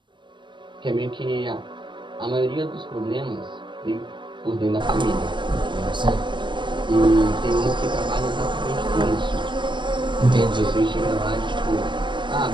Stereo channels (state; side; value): late; left; 0.23 ms